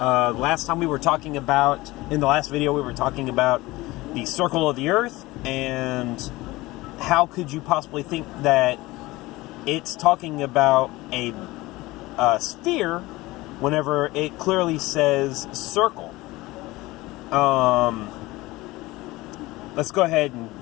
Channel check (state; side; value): quieter; right; 19.9 dB